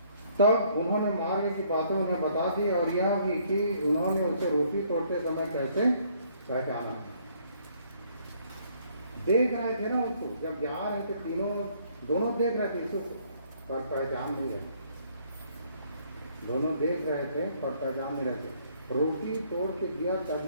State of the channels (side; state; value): both; inverted; correlation -0.64